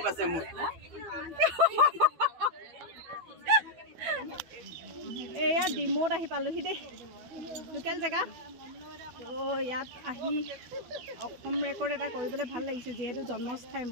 আছে মোৰ এয়া ডিমোত আহি পালোহি দেই লোকেল জেগা তো ইয়াত আহি অসম ৰেকৰ্ড এটা কৰিবলৈ ভাল লাগিছে যিহেতু জন্মস্থাই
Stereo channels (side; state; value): left; late; 12 ms